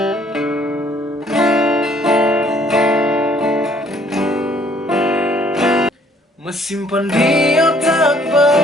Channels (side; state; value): both; normal; correlation 0.61